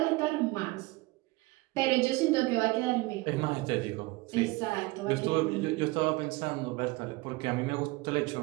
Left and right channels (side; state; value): left; quieter; 22.3 dB